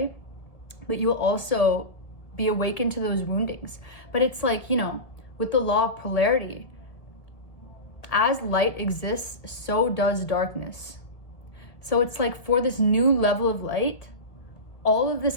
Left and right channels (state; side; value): late; right; 1.7 ms